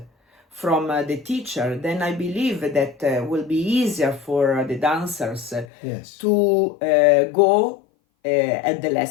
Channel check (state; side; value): drops out; right; at 5.7 s